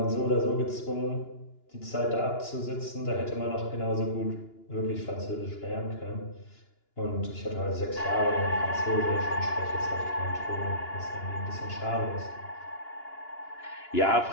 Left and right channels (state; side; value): late; right; 2.9 ms